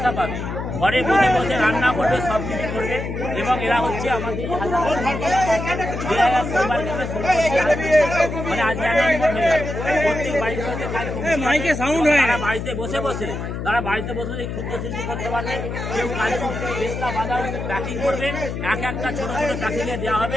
পাবে। ঘরে বসে বসে রান্না করবে, সব কিছু করবে এবং এরা হচ্ছে আমাদের মানে আজকে অ্যানাউন্সমেন্ট হয়ে যাবে। প্রত্যেক বাড়িতে বাড়িতে বসে বসে ক্ষুদ্র শিল্প করতে পারবে। কেউ কাজু পেস্তা বাদাম প্যাকিং করবে, এক একটা ছোট ছোট প্যাকিংয়ে দেওয়া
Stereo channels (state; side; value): noise; left; hum, 5 dB below the sound